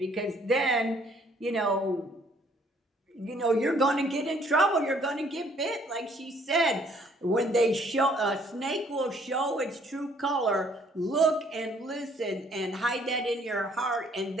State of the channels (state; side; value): normal; both; correlation 0.62